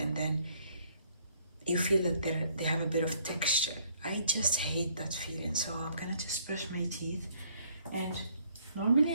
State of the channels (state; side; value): inverted; both; correlation -0.64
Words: then you feel that they have a bit of texture. I just hate that feeling, so I'm gonna just brush my teeth. And normally